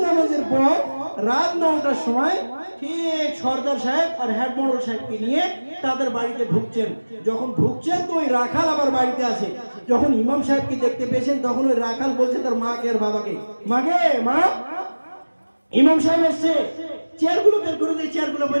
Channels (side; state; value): both; inverted; correlation -1.00